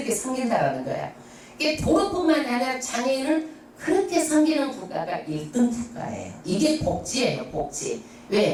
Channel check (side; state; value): both; identical; correlation 1.00